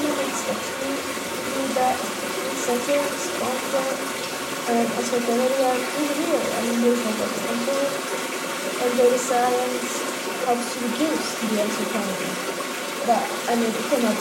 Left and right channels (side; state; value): both; identical; correlation 1.00